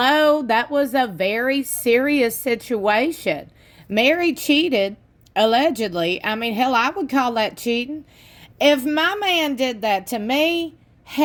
that was a very serious situation. Meri cheated, allegedly. I mean, hell, I would call that cheating. If my man did that to me,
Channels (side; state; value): both; identical; correlation 1.00